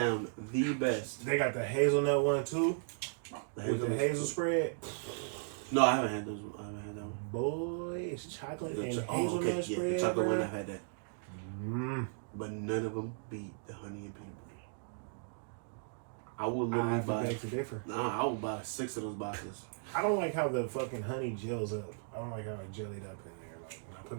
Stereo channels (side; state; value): left; silent; digital silence